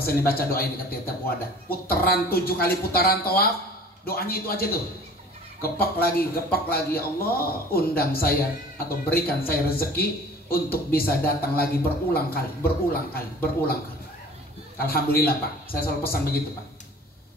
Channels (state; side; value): normal; both; correlation 0.46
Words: pesan dibaca doa ini ketika tiap wadah. Putaran 7 kali putaran tawaf, doanya itu aja tuh. Gepak lagi, ya Allah, undang saya atau berikan saya rezeki untuk bisa datang lagi berulang kali. Alhamdulillah Pak, saya selalu pesan begitu Pak.